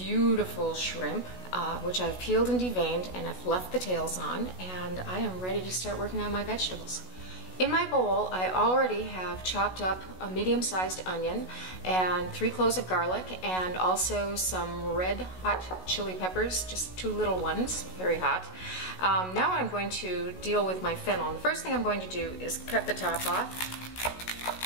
shrimp, which I've peeled and deveined, and I've left the tails on, and I am ready to start working on my vegetables. In my bowl, I already have chopped up a medium-sized onion and 3 cloves of garlic, and also some red hot chili peppers, just 2 little ones, very hot. Now I'm going to deal with my fennel. And the first thing I'm going to do is cut the top off,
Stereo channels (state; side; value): late; right; 16 ms